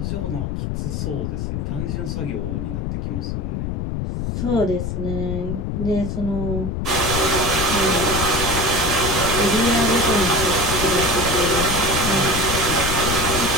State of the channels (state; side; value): noise; left; rumble, 2 dB below the sound